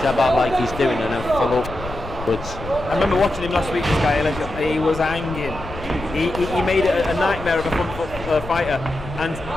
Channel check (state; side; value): noise; left; rumble, 12 dB below the sound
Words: jab out like he's doing and then follow upwards. I remember watching him last week, this guy Eligio. He was hanging. He made it a nightmare of a front foot fighter, and